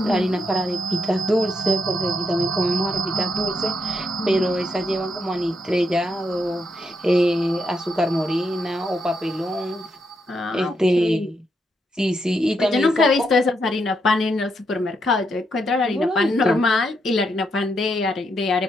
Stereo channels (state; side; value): normal; both; correlation 0.80